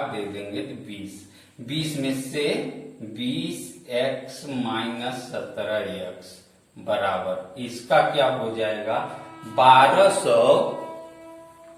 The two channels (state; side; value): identical; both; correlation 1.00